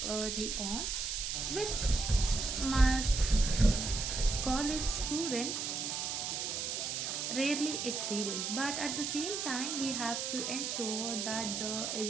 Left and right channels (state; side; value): noise; right; hiss, 2 dB below the sound